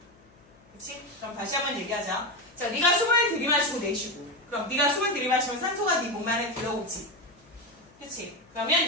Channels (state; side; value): noise; left; hum, 29 dB below the sound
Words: 그치? 그럼 다시 한번 얘기하자. 자, 네가 숨을 들이마시고 내쉬고. 그럼 네가 숨을 들이마시면 산소가 네 몸 안에 들어오지. 그치? 그러면